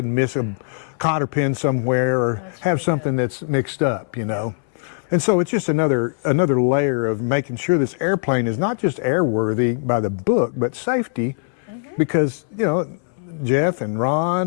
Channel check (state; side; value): silent; right; 62 dB below the other